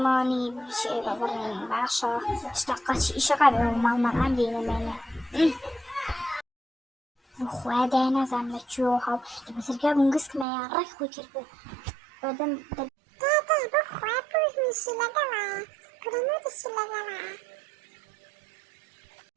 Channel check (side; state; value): left; drops out; at 10.5 s